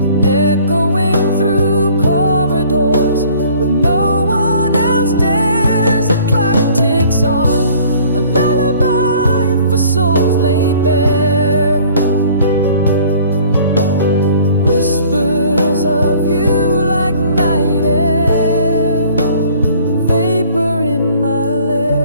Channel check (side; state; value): both; inverted; correlation -0.54